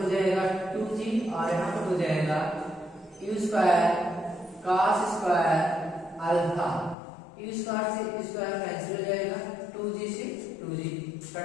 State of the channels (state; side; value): drops out; right; at 7.0 s